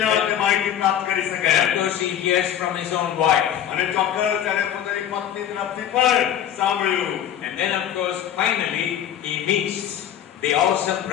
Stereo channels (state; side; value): quieter; right; 10.2 dB